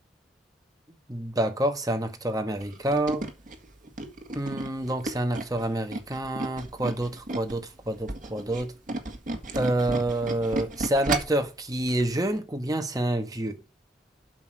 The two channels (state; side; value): normal; both; correlation 0.68